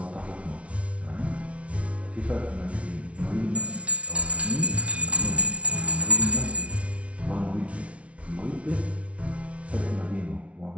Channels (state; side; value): late; left; 0.063 ms